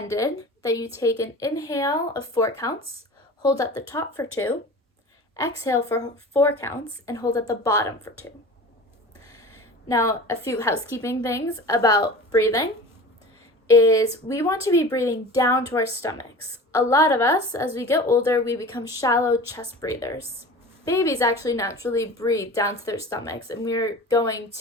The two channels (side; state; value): both; normal; correlation 0.37